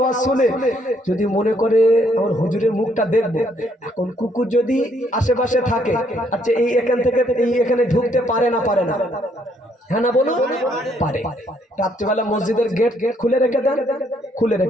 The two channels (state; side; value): normal; both; correlation 0.69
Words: শুনে, যদি মনে করে আমার হুজুরের মুখটা দেখবো, এখন কুকুর যদি আশেপাশে থাকে, আচ্ছা এই এখান থেকে এই এখানে ঢুকতে পারে না? পারে না? হ্যাঁ না বলুন? পারে। রাত্রিবেলা মসজিদের গেট খুলে রেখে দেন, খুলে